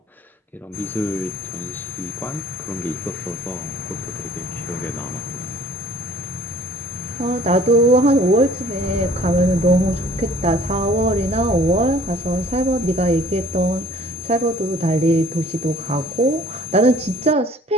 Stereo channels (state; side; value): normal; both; correlation 0.53